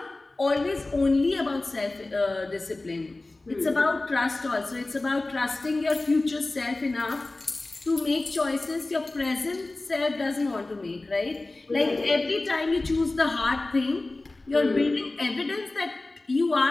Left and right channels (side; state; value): right; quieter; 3.0 dB